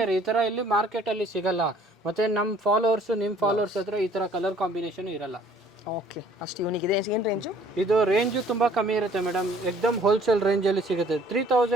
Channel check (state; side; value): normal; both; correlation 0.57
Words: ಈ ತರ ಇಲ್ಲಿ ಮಾರ್ಕೆಟ್ ಅಲ್ಲಿ ಸಿಗಲ್ಲ. ಮತ್ತೆ ನಮ್ಮ ಫಾಲೋವರ್ಸ್ ನಿಮ್ಮ ಫಾಲೋವರ್ಸ್ ಹತ್ರ ಈ ತರ ಕಲರ್ ಕಾಂಬಿನೇಷನ್ ಇರಲ್ಲ. ಓಕೆ, ಅಷ್ಟು ಯೂನಿಕ್ ಇದೆ. ಏನು ರೇಂಜು? ಇದು ರೇಂಜು ತುಂಬಾ ಕಮ್ಮಿ ಇರುತ್ತೆ ಮೇಡಮ್. ಎಕ್ದಮ್ ಹೋಲ್ಸೇಲ್ ರೇಂಜ್ ಅಲ್ಲಿ ಸಿಗುತ್ತೆ.